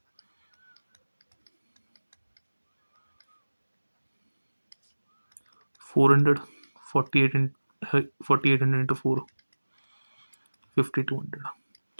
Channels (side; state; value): both; inverted; correlation -1.00